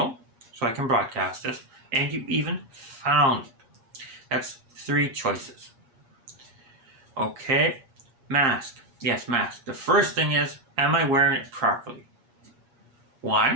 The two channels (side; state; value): left; late; 8.4 ms